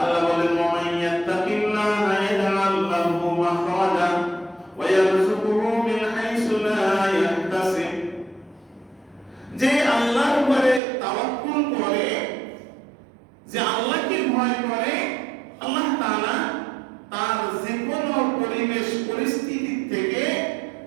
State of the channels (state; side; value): drops out; left; at 10.8 s